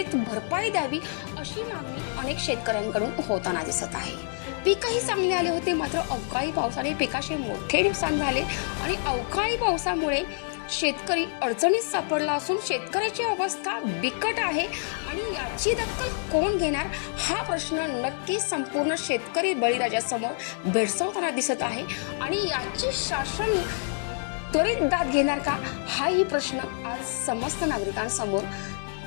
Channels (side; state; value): right; silent; 57 dB below the other